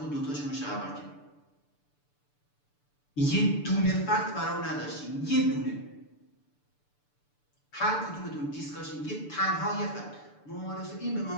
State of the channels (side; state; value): right; late; 6.8 ms